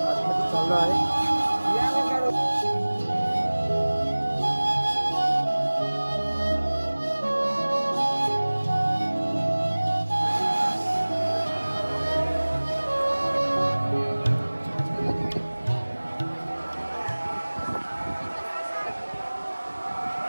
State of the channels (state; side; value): inverted; both; correlation -1.00